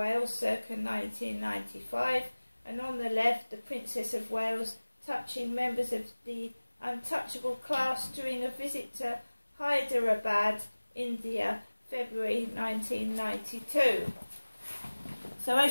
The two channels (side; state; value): both; inverted; correlation -1.00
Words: circa 1995, and on the left, the Princess of Wales touching members of the untouchable class during a visit to Hyderabad, India, February 1992. So